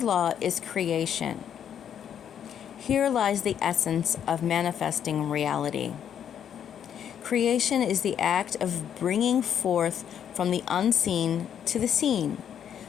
law is creation. Here lies the essence of manifesting reality. Creation is the act of bringing forth from the unseen to the seen,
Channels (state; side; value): quieter; right; 9.0 dB